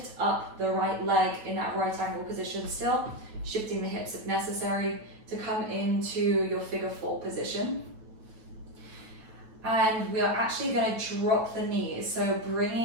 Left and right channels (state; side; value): late; left; 9.2 ms